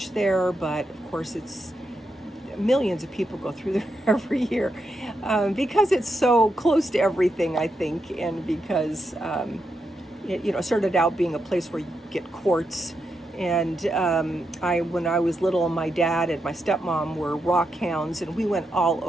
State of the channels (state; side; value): normal; both; correlation 0.84